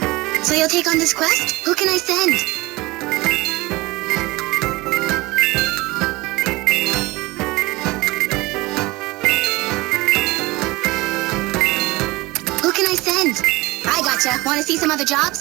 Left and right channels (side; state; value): left; quieter; 21.5 dB